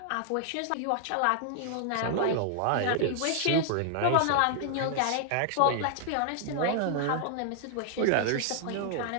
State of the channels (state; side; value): different; both; correlation 0.00